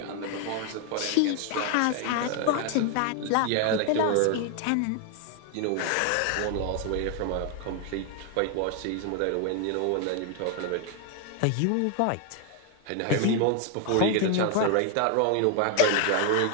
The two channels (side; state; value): both; different; correlation 0.00